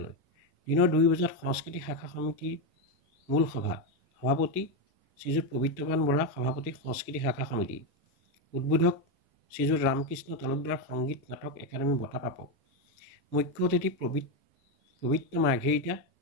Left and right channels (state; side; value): normal; both; correlation 0.08